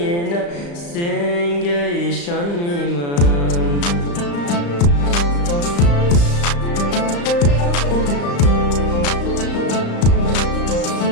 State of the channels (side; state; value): right; late; 35 ms